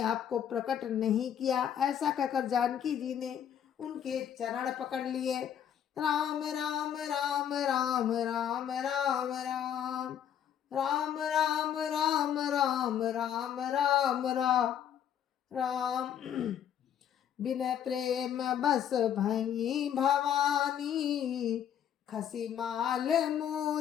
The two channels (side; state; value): right; quieter; 9.4 dB